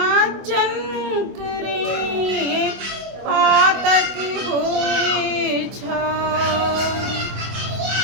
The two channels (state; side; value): late; left; 24 ms